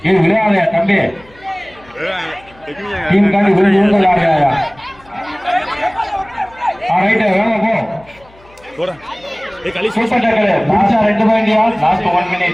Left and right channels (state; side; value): noise; left; hum, 27 dB below the sound